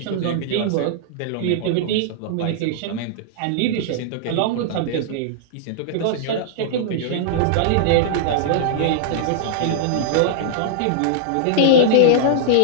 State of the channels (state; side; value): different; both; correlation -0.01